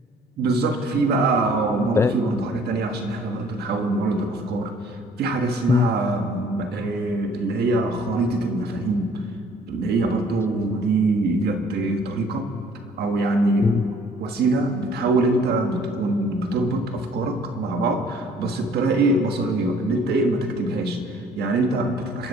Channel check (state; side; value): normal; both; correlation 0.57